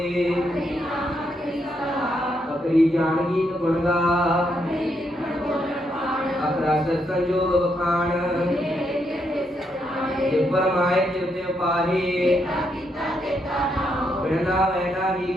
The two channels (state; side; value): normal; both; correlation 0.78